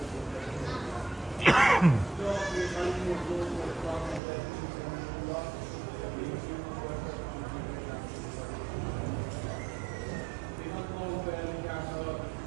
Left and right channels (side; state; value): left; drops out; at 4.2 s